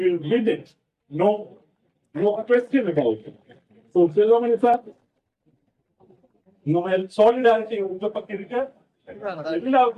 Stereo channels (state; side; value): identical; both; correlation 1.00